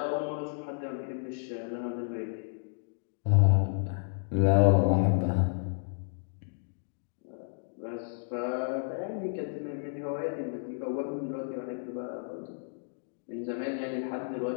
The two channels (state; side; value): silent; right; digital silence